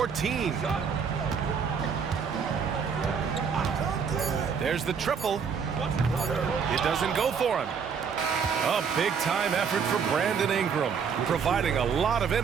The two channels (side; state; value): left; quieter; 6.4 dB